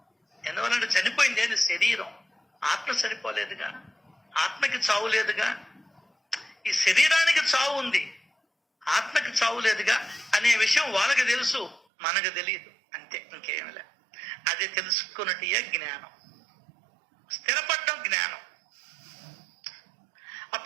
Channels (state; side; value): drops out; left; at 11.8 s